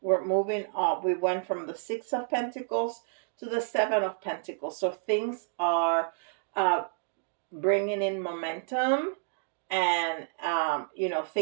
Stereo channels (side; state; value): left; silent; digital silence